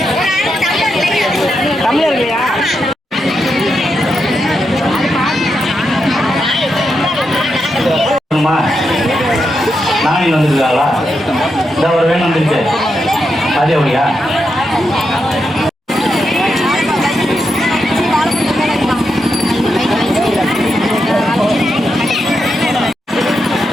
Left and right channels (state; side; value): normal; both; correlation 0.85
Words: தமிழர் இல்லையா? நானே வந்துருக்காங்களா? இந்த ஒரு வேணும் வந்துருச்சு. அதே அப்படியா?